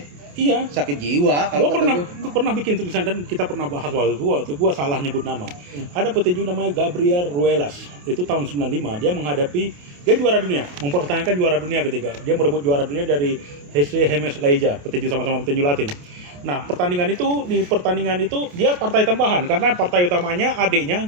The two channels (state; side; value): late; left; 28 ms